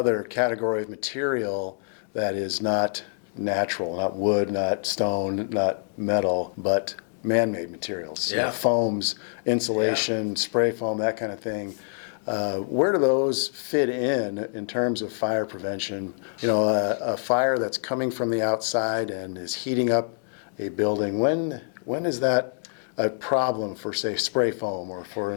category of material that is not natural, not wood, not stone, not metal, but man-made materials. Yeah. Foams, insulation, spray foam, that kind of thing. Where do those fit in terms of fire prevention? You know, a fire that's coming from the outside and is heating up a building, when is that a problem for, say, spray foam or for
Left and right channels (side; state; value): right; silent; digital silence